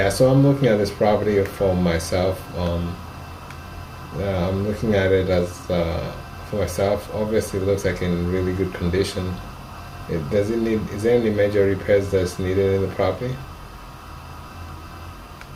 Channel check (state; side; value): identical; both; correlation 1.00